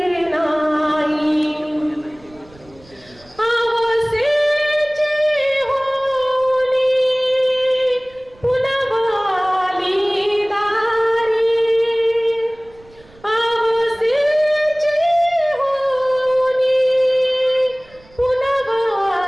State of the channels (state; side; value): noise; right; rumble, 27 dB below the sound